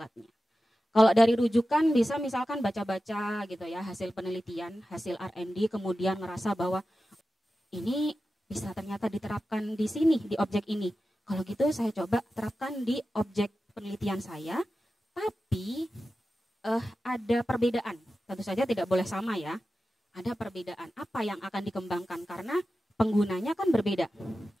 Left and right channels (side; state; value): both; normal; correlation 0.93